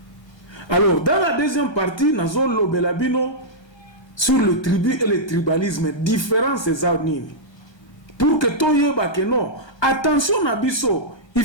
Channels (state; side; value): late; right; 1.3 ms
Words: Alors, dans la deuxième partie, Nazo Lobelabino sur le tribu et le tribalisme, différence des nini. Pour que Toyeba que non, attention Nabiso, il